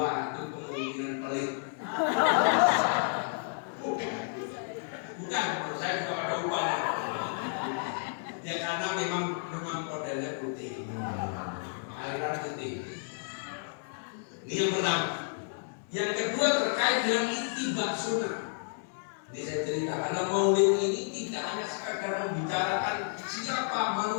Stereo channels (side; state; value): right; silent; digital silence